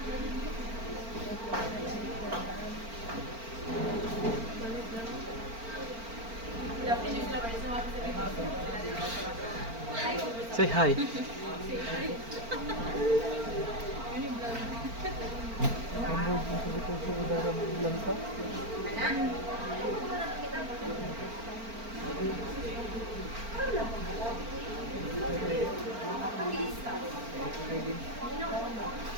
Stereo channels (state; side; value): late; left; 4.4 ms